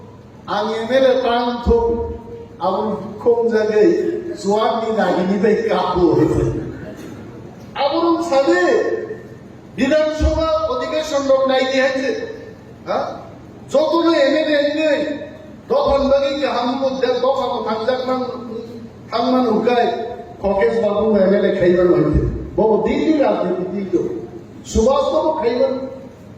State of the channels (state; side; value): identical; both; correlation 1.00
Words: आं एमएलए प्रांतो आबो दुखम जागै Suami nagini baik kabur. Aburun sabe বিধানসভা অধিবেশন লোক নাই দিয়েছে হ্যাঁ যতন এমএলএ নেই তখন বাকি যে হামকো দফা থাকমান হুকায় ককেশ বাবু এমএলএ খাইবার হইতে বহু দিল্লি রাজনীতি দিল সুভাষ বাবু খাইবার